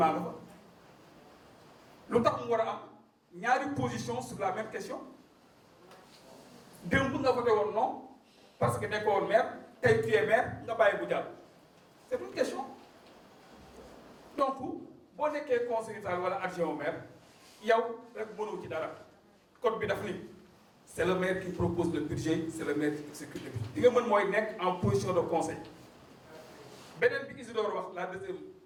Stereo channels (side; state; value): both; identical; correlation 1.00